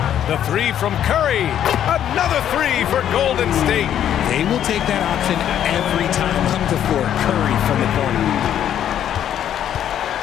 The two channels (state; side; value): quieter; right; 10.3 dB